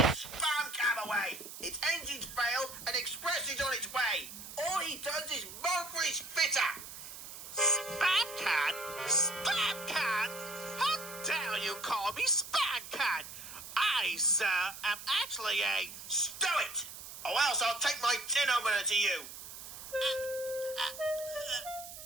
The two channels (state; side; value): noise; right; hiss, 12 dB below the sound